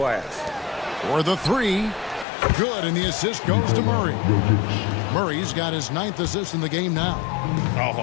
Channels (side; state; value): right; drops out; at 2.2 s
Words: For the three. Good, and the assist goes to Murray. Murray's got his 9th assist in the game now. Oh,